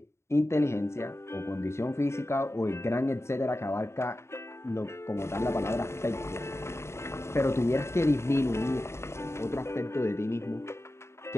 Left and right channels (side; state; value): right; late; 0.13 ms